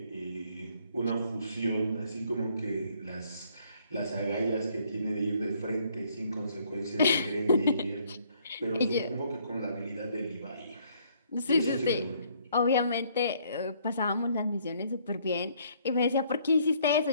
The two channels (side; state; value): both; inverted; correlation -0.65